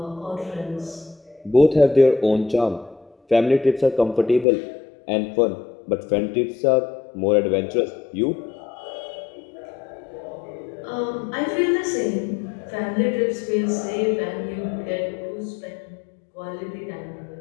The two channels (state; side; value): drops out; right; at 4.5 s